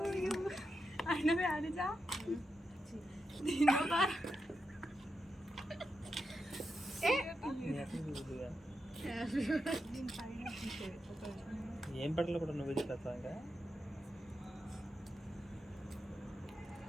ఏం పట్ల కూడా నువ్వు చేస్తా ఇంకా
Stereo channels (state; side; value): normal; both; correlation 0.87